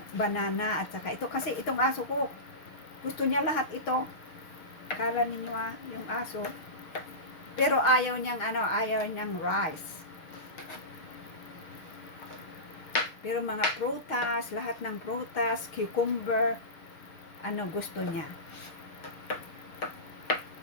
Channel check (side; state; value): right; late; 6.5 ms